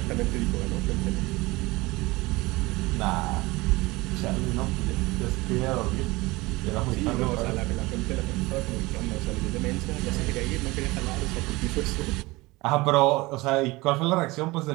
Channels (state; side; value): quieter; left; 21.8 dB